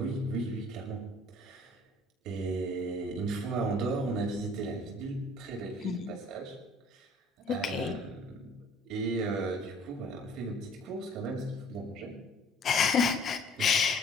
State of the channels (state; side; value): normal; both; correlation 0.53